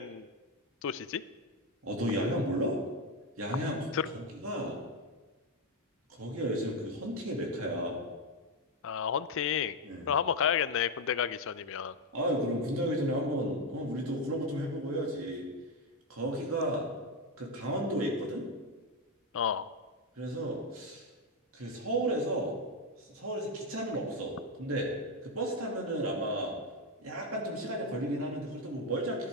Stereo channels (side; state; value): both; normal; correlation 0.07